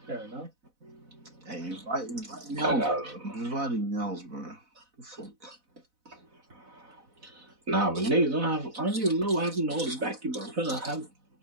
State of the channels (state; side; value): late; left; 4.0 ms